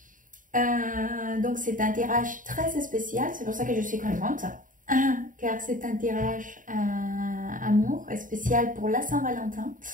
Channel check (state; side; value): late; left; 0.39 ms